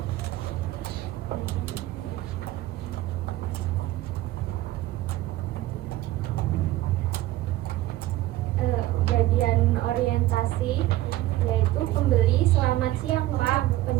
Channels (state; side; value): quieter; left; 15.9 dB